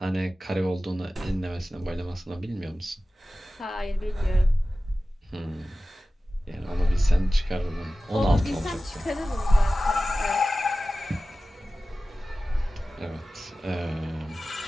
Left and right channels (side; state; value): both; normal; correlation 0.96